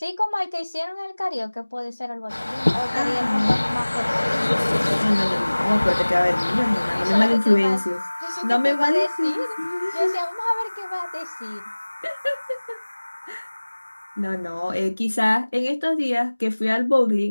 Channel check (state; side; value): inverted; both; correlation -1.00